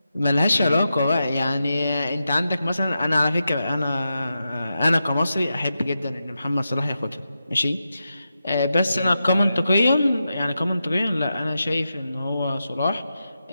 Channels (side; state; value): both; inverted; correlation -0.89